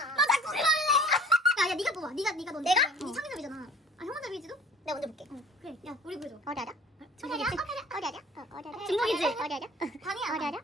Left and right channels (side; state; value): both; normal; correlation 0.48